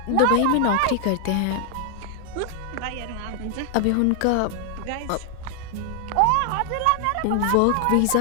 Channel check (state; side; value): different; both; correlation 0.00